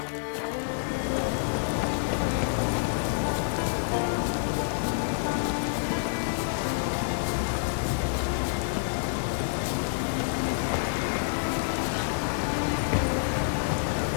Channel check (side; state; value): right; silent; digital silence